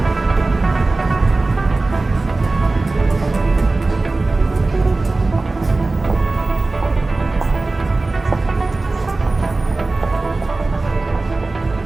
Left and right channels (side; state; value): left; quieter; 3.3 dB